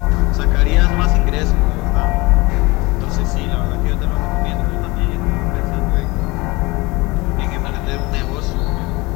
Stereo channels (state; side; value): quieter; right; 23.3 dB